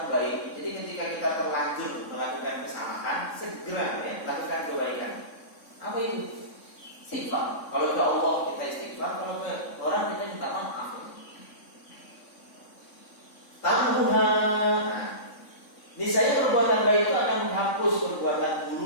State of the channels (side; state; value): right; late; 3.6 ms